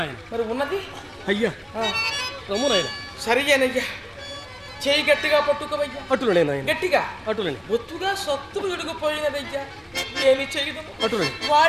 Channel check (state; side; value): identical; both; correlation 1.00